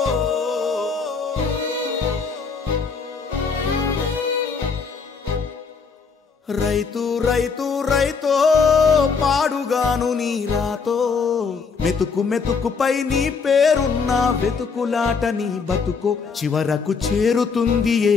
రైతు రైతు రైతో పాడుగాను నీ రాతో, మెతుకు మెతుకుపై నీ పేరున్న వెతుకులాట నీ బతుకో, చివరకు చేరుతుంది ఏ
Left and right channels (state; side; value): quieter; right; 5.2 dB